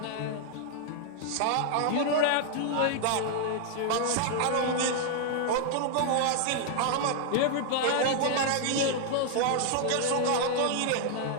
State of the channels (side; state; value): both; different; correlation 0.00